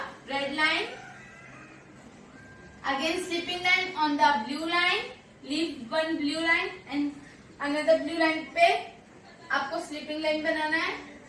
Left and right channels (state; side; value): identical; both; correlation 1.00